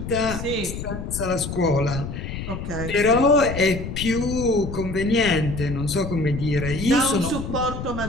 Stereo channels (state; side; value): noise; left; rumble, 7 dB below the sound